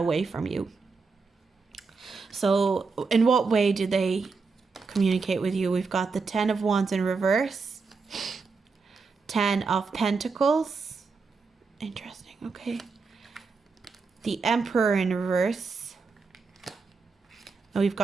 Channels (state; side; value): quieter; left; 4.6 dB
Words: from you. So in what way do they communicate with you? We've got the 10 of Wands in reverse, 10 of Pentacles. Interesting. Okay. The Emperor in reverse. And we've